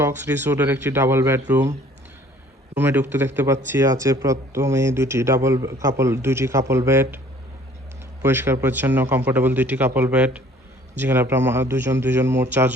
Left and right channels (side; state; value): both; normal; correlation 0.55